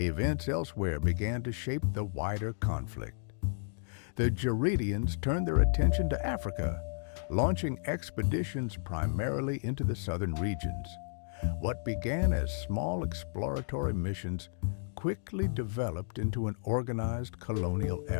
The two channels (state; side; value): silent; right; digital silence